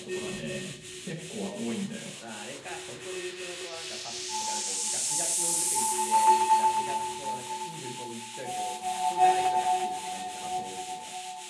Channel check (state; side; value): identical; both; correlation 1.00